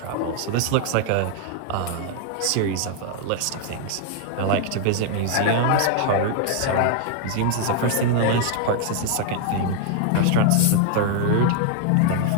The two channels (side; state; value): both; different; correlation 0.00